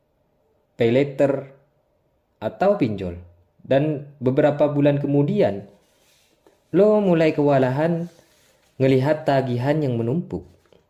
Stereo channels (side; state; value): both; identical; correlation 1.00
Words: pay later, atau pinjol. Dan beberapa bulan kemudian, lo mulai kewalahan ngelihat tagihan yang menumpuk.